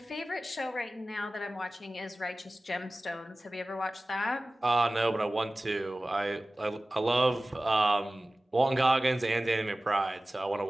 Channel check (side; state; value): both; normal; correlation 0.97